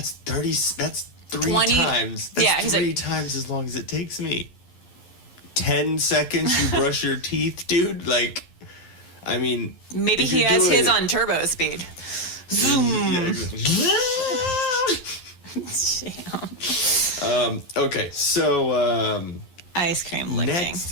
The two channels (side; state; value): right; late; 11 ms